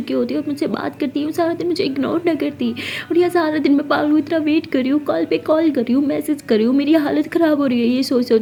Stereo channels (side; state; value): both; identical; correlation 1.00